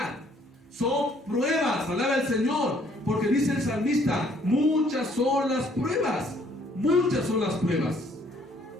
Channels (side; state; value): both; normal; correlation 0.63